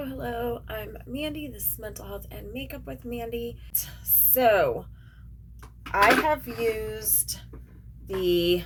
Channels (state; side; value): identical; both; correlation 1.00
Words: hello. I'm Mandy. This is Mental Health and Makeup with Mandy. So, I have used the